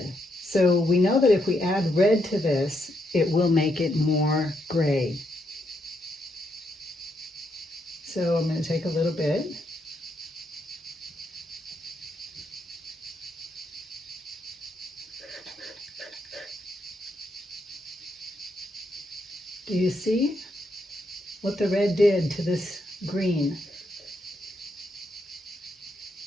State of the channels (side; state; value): both; normal; correlation 0.78